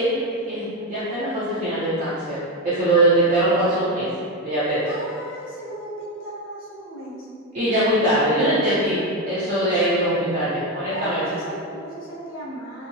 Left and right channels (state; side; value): normal; both; correlation 0.11